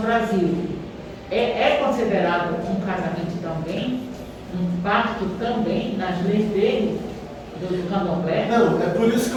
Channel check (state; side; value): identical; both; correlation 1.00